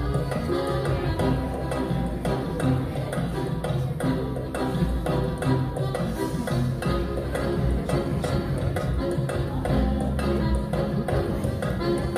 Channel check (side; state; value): both; identical; correlation 1.00